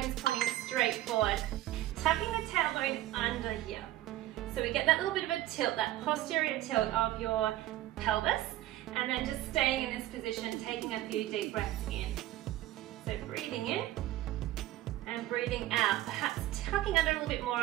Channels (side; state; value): left; quieter; 14.8 dB